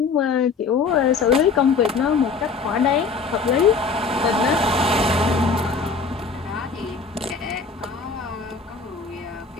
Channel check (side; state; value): right; quieter; 4.7 dB